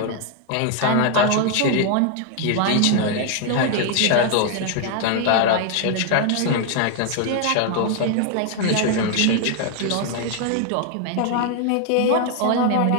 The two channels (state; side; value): different; both; correlation 0.00